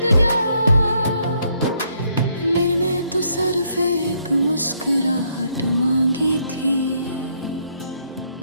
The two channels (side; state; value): both; inverted; correlation -0.71